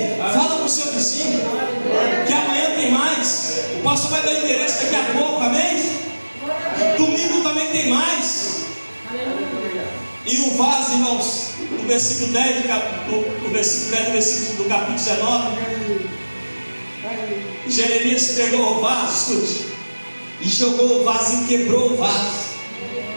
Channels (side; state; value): both; inverted; correlation -1.00